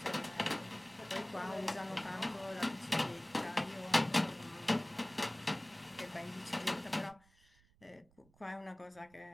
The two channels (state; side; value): noise; right; rumble, 30 dB below the sound